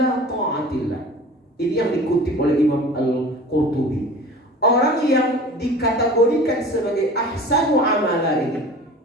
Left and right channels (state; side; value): normal; both; correlation 0.41